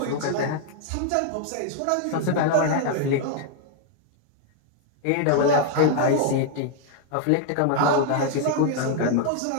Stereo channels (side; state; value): both; different; correlation 0.00